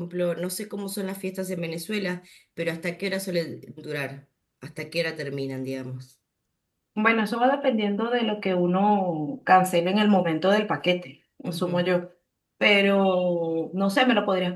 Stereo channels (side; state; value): both; identical; correlation 1.00